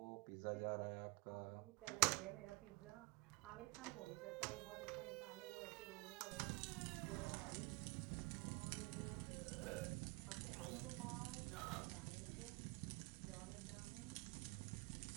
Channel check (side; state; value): left; quieter; 27.1 dB